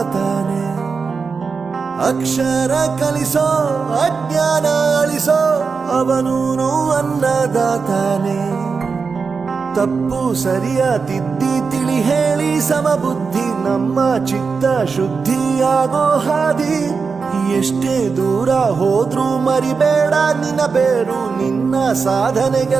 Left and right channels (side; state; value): left; quieter; 5.1 dB